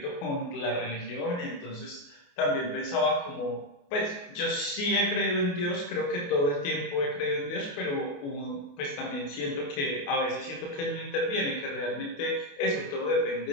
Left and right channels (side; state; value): right; late; 28 ms